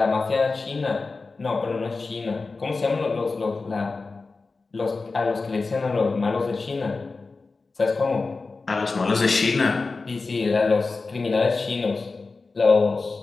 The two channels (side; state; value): right; quieter; 4.0 dB